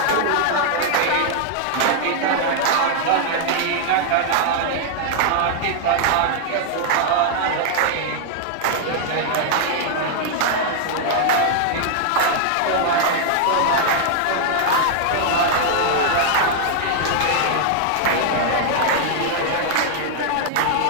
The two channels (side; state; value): both; different; correlation 0.00